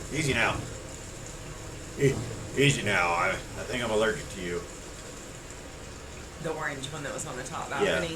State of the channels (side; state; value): left; noise; hum, 25 dB below the sound